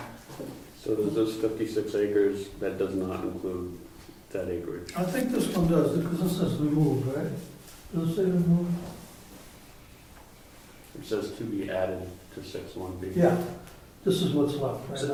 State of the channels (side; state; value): both; identical; correlation 1.00